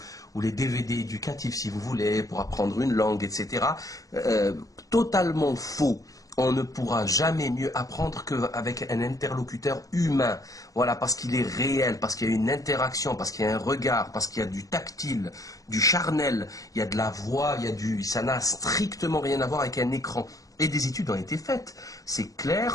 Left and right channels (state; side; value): late; right; 0.17 ms